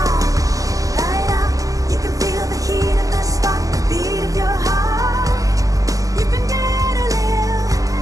Light up, you can feel the heat of the spark, the beat of your heart. You can dare to live,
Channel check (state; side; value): late; left; 0.17 ms